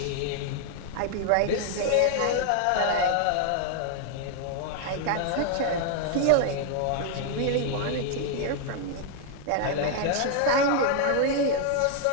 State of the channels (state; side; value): different; both; correlation 0.00